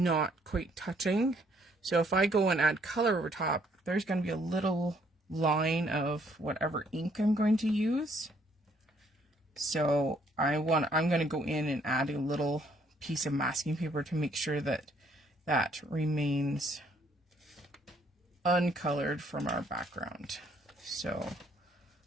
quite touching. So if I go and add color over top, there's going to be a little line of whatever ink I'm going to use. So I'm going to go in and add a little piece of masking paper to make sure that that remains uncolored from our background. So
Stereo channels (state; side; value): normal; both; correlation 0.66